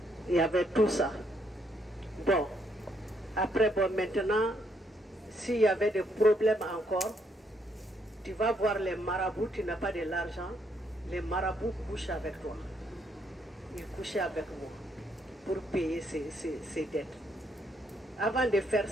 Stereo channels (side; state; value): both; normal; correlation 0.72